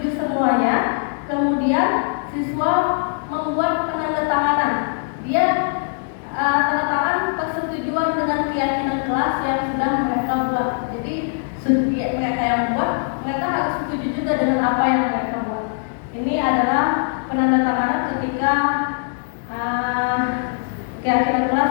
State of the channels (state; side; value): silent; right; digital silence